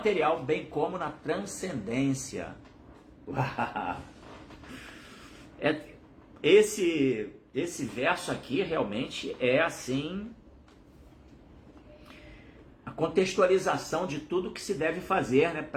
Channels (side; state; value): both; identical; correlation 1.00